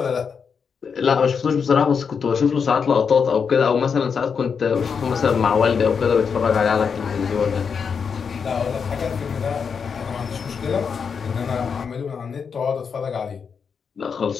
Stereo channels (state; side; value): quieter; right; 6.2 dB